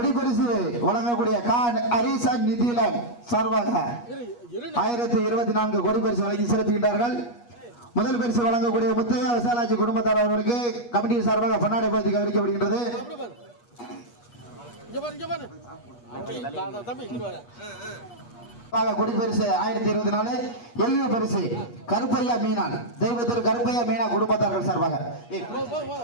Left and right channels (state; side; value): late; right; 8.4 ms